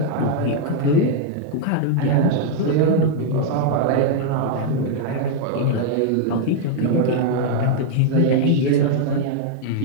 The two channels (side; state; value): both; different; correlation -0.01